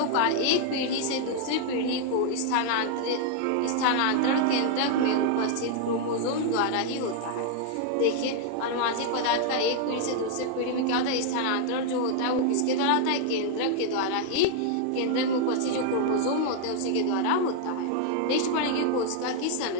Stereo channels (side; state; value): both; different; correlation 0.00